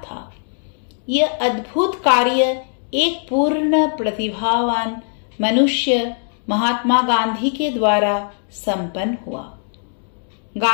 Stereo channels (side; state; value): right; silent; 66 dB below the other